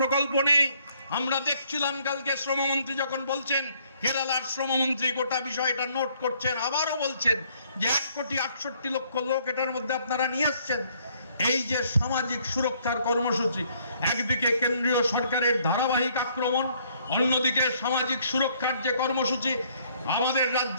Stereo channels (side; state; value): both; inverted; correlation -0.65